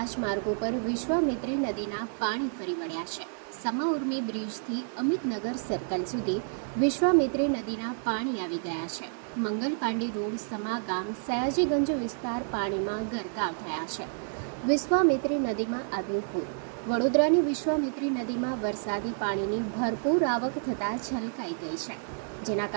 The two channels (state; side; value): silent; left; digital silence